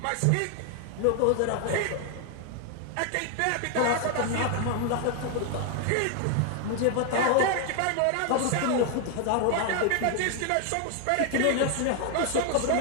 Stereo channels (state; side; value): different; both; correlation 0.00